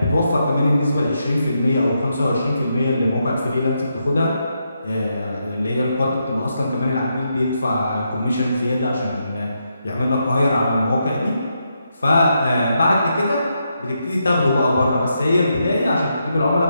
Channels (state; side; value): inverted; both; correlation -0.82